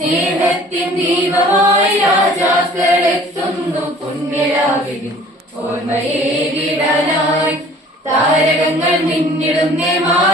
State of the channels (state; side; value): normal; both; correlation 0.50